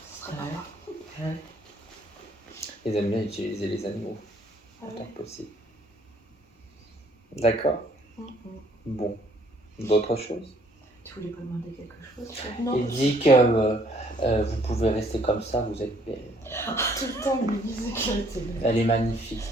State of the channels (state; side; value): normal; both; correlation 0.63